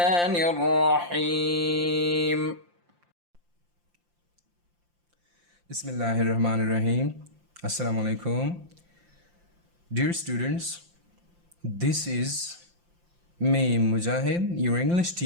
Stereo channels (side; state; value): left; late; 5.7 ms